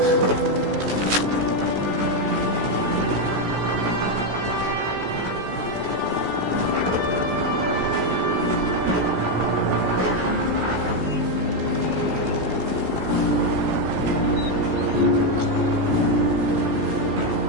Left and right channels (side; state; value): left; late; 16 ms